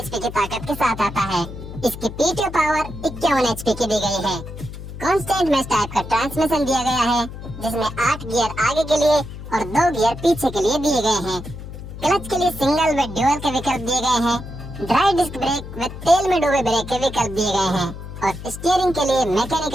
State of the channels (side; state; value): left; noise; hum, 11 dB below the sound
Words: की ताकत के साथ आता है। इसकी पीटीओ पावर 51 एचपी की दी गई है। कांस्टेंट मैश टाइप का ट्रांसमिशन दिया गया है, जिसमें 8 गियर आगे के लिए और 2 गियर पीछे के लिए दिए गए हैं। क्लच के लिए सिंगल व ड्यूअल के विकल्प दिए गए हैं। ड्राई डिस्क ब्रेक व तेल में डूबे ब्रेक के विकल्प दिए गए हैं और स्टीयरिंग के लिए